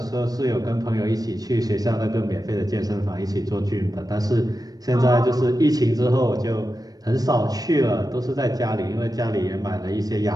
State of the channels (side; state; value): left; late; 0.18 ms